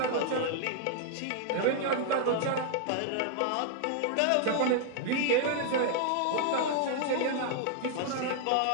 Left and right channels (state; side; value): different; both; correlation 0.00